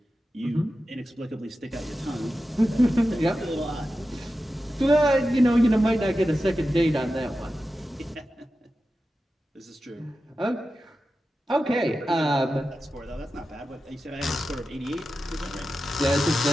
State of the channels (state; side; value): normal; both; correlation 0.92